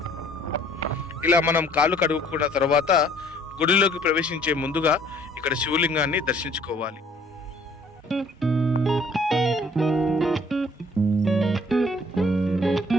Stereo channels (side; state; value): both; normal; correlation 0.58